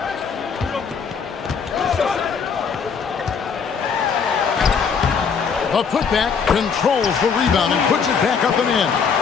A putback controls the rebound and puts it back up and in.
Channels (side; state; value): right; quieter; 6.1 dB